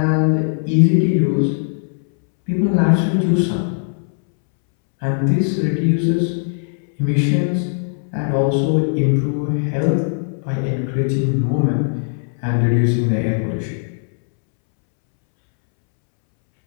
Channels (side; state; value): right; silent; 65 dB below the other